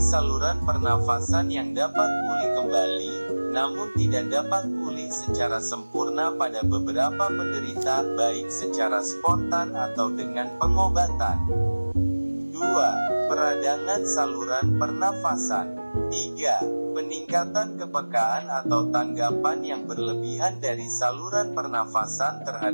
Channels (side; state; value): both; inverted; correlation -1.00